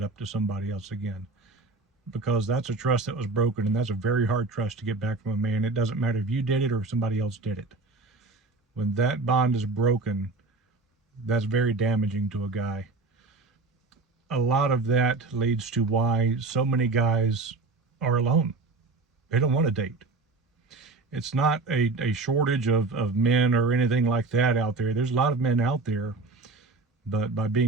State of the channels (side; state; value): left; quieter; 3.5 dB